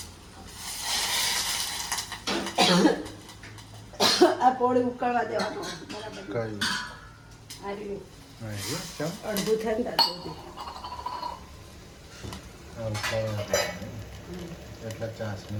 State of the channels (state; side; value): identical; both; correlation 1.00